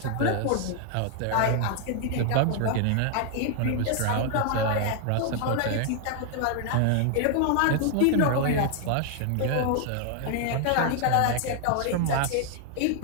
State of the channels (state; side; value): different; both; correlation 0.00